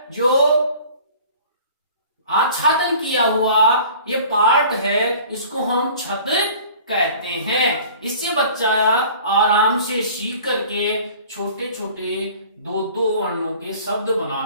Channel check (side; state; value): both; inverted; correlation -0.47